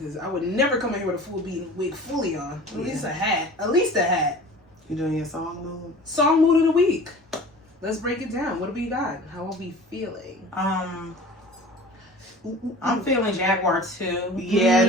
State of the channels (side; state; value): both; normal; correlation 0.41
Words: I would never come in here with a full beating wig fully on. At least a hat. At least a hat. You doing your song mood? Song mood of the week. Let's break it down. What do we got? How are we feeling? I'm feeling Jaguar too. Yeah,